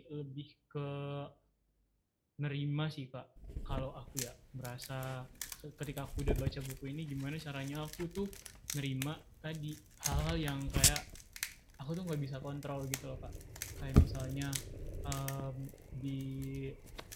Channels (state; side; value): identical; both; correlation 1.00